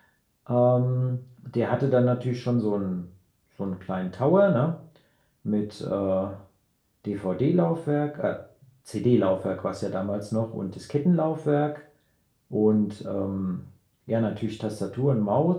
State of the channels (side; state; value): both; identical; correlation 1.00